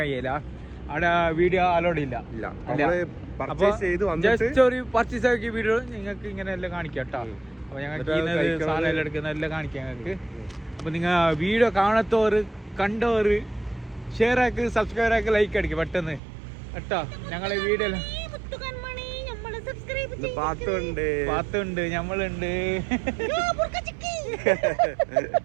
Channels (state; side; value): drops out; left; at 16.2 s